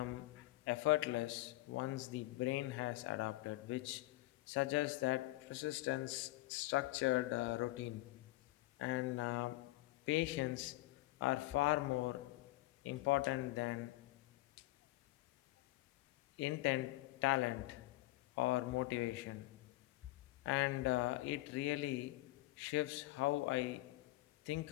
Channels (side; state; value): right; quieter; 18.7 dB